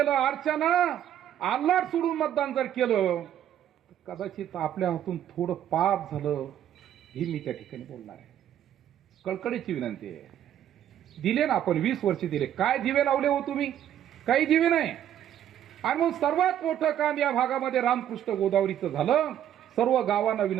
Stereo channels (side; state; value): left; quieter; 10.7 dB